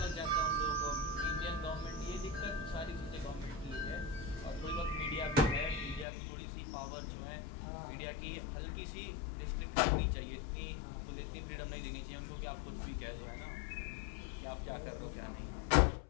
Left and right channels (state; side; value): drops out; right; at 6.1 s